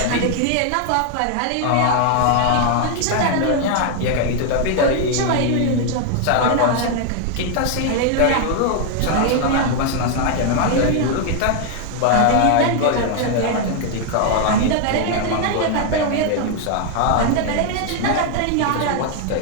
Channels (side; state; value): both; different; correlation 0.00